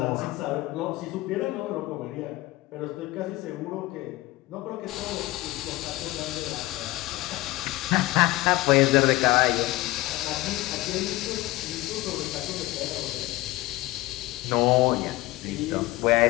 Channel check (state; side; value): quieter; right; 18.9 dB